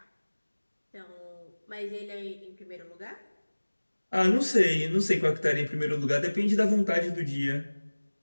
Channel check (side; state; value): both; inverted; correlation -1.00